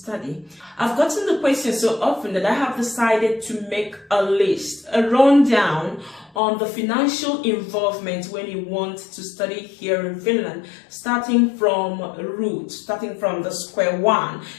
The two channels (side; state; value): right; drops out; at 6.4 s